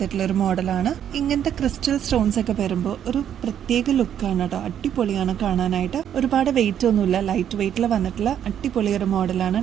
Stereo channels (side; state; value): left; quieter; 9.6 dB